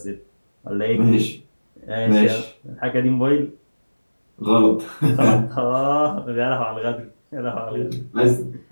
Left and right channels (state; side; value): inverted; both; correlation -1.00